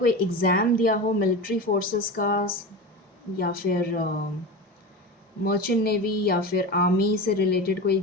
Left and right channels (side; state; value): both; normal; correlation 0.26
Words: एग्ज़ाम दिया हो मिलिट्री फोर्सेस का, या फिर मर्चेंट नेवी या फिर आर्मी से रिलेटेड कोई